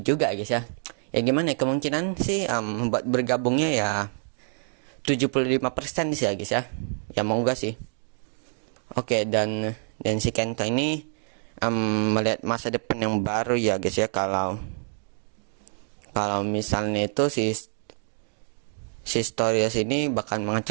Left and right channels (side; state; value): left; silent; 61 dB below the other